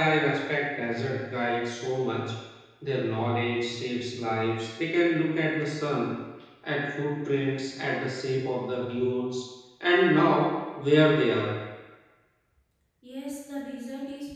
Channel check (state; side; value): identical; both; correlation 1.00